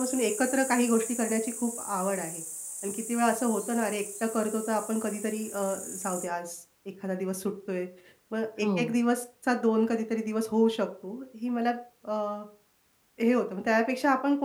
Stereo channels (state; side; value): identical; both; correlation 1.00